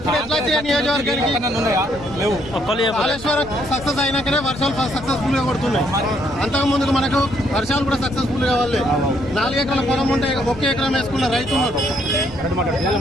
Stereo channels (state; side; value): noise; right; rumble, 16 dB below the sound